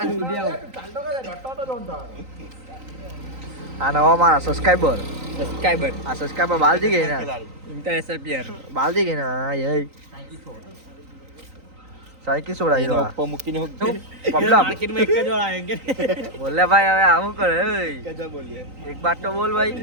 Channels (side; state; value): left; late; 3.9 ms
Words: આ નવા મારા સબસ્ક્રાઇબર સબસ્ક્રાઇબર આ સબસ્ક્રાઇબર બાલજી ગઈ ને ઇન્ટરનેશનલ પ્લેયર બાલજી ગઈ ને હા યે સાઈકી છોડાઈ દો ઉપર મૂકીને પબલા માર્કેટમાં એક જ વાર આવેંગે બોલે ભાઈ હવે આવું કરે ઓય कैसा बोलिए એક બાત તો બોલ